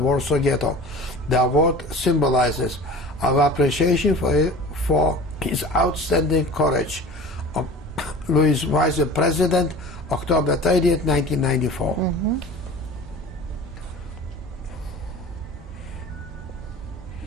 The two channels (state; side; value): normal; both; correlation 0.40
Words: Ghetto. The award symbolizes our appreciation for his outstanding courage. Louis Vice President, October 30th, 1994. Mm-hmm.